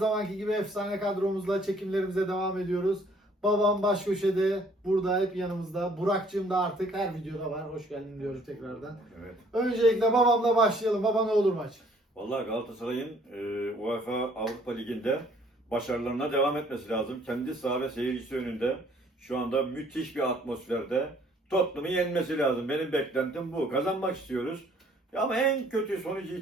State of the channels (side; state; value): both; normal; correlation 0.60